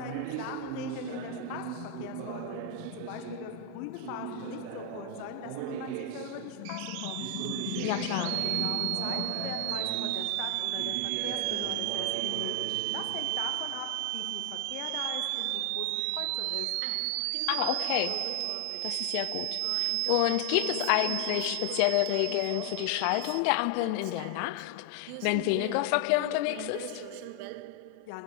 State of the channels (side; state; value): both; different; correlation 0.00